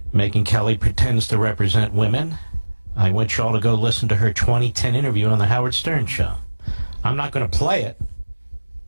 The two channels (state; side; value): inverted; both; correlation -1.00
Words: Megyn Kelly pretends to represent women. I want you all to go listen to her 2010 interview on the Howard Stern Show. I'm not going to play it.